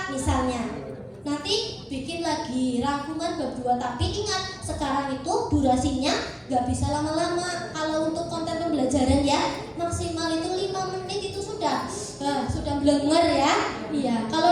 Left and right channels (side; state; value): both; identical; correlation 1.00